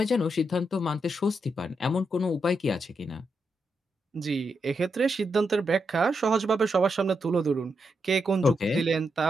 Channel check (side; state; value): both; normal; correlation 0.83